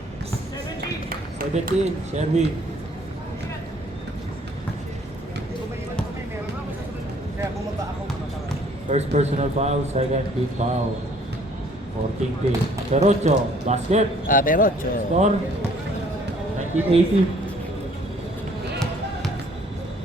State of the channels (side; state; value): both; normal; correlation 0.59